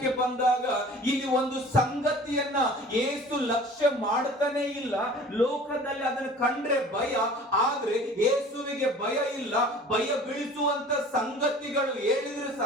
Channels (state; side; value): normal; both; correlation 0.45